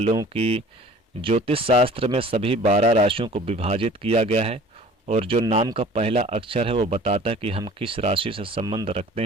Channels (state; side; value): normal; both; correlation 0.47